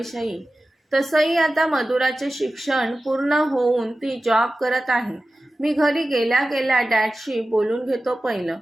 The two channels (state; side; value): normal; both; correlation 0.95